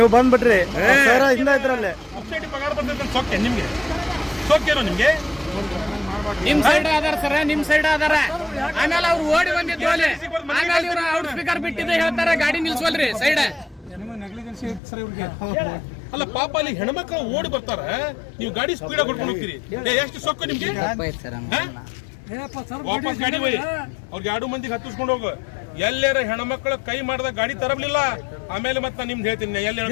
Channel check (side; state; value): right; drops out; at 14.8 s